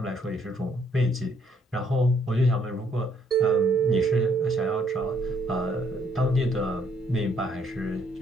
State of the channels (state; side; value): normal; both; correlation 0.68